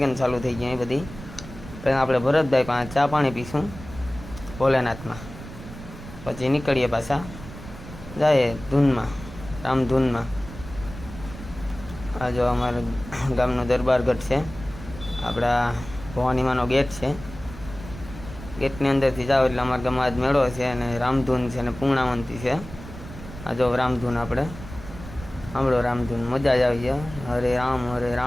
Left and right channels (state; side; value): noise; right; rumble, 14 dB below the sound